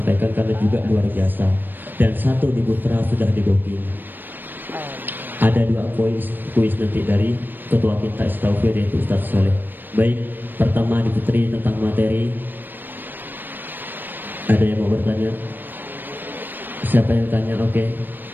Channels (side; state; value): left; late; 0.092 ms